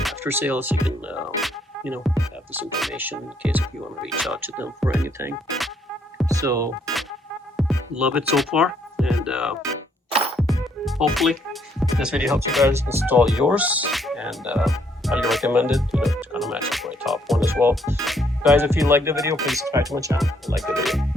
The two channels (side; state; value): both; normal; correlation 0.69